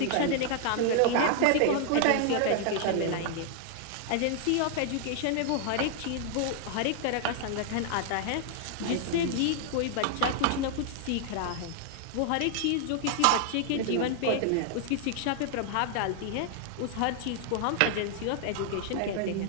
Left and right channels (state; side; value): different; both; correlation 0.00